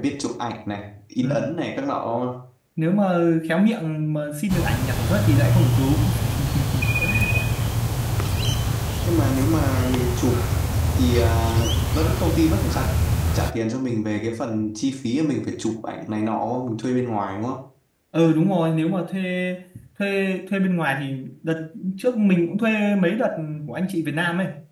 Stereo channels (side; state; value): both; identical; correlation 1.00